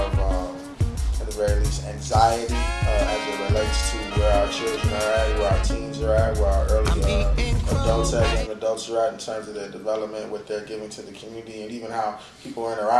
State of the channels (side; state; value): both; identical; correlation 1.00